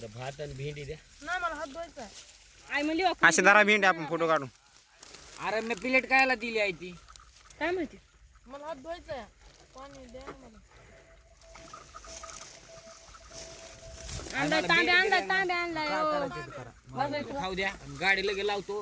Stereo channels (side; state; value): both; identical; correlation 1.00